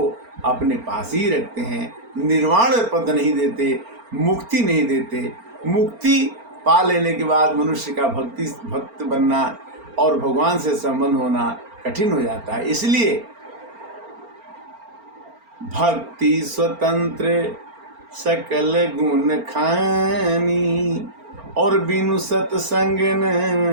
अपने पास ही रखते हैं। निर्वाण पद नहीं देते, मुक्ति नहीं देते। मुक्ति पा लेने के बाद मनुष्य का भक्त बनना और भगवान से संबंध होना कठिन हो जाता है। इसलिए भक्ति स्वतंत्र सकल गुण खानी, और बिनु सत्संग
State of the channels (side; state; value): left; late; 4.4 ms